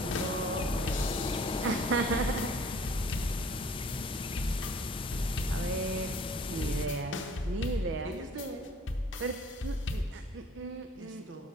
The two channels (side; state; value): both; normal; correlation 0.53